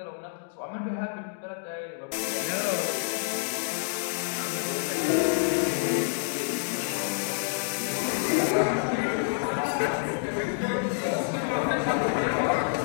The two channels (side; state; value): right; silent; digital silence